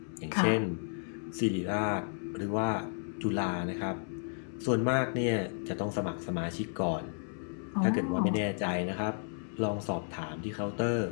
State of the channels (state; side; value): silent; right; digital silence